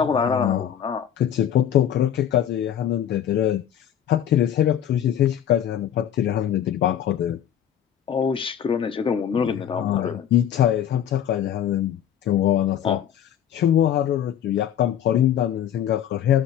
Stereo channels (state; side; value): quieter; right; 9.8 dB